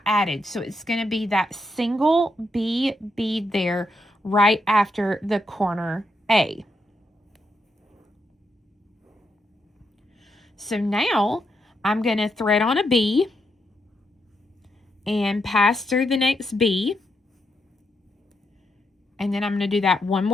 added. So it's going to be that single B bead there right after the corner A. So now I'm going to thread on a B and pass through the next B. And then I'm going to do that one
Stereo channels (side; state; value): both; normal; correlation 0.81